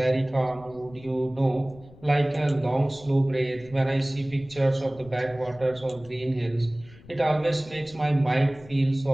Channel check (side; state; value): left; noise; rumble, 21 dB below the sound